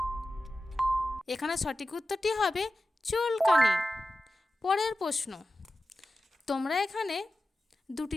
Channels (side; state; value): both; normal; correlation 0.94